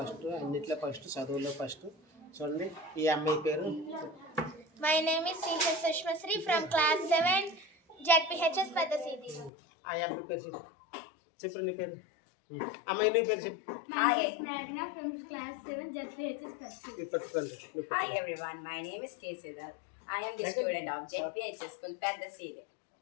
అన్నిట్లో ఫస్ట్, చదువులో ఫస్ట్. చూడండి ఈ అమ్మాయి పేరు. My name is CH Sushmasri from class 7 ZPHS పెద్ద సీది. ఆ అమ్మాయి పేరు చెప్పు. నీ పేరు అమ్మాయి, నీ పేరు చెప్పు. Hi, Snagna from class 7 JPHS Percy. Hi everyone, my name is K. Siddharth. I am the student of JPHS School Pandaside.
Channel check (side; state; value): right; drops out; at 9.5 s